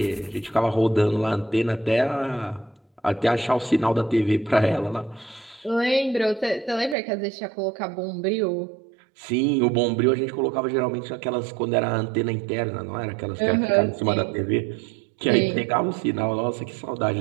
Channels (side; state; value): left; drops out; at 7.0 s